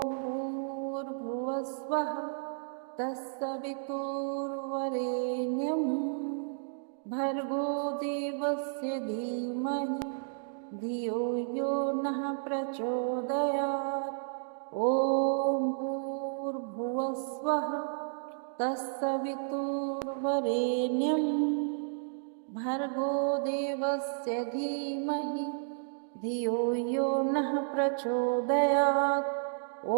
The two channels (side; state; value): left; silent; digital silence